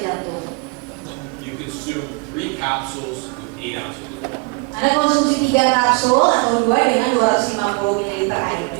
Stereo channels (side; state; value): left; quieter; 30.4 dB